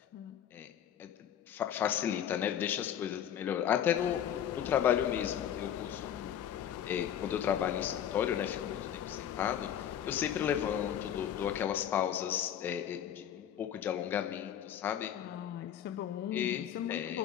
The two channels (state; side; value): quieter; right; 9.9 dB